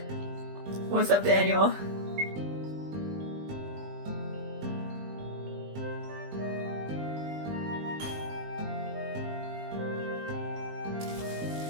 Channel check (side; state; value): left; late; 20 ms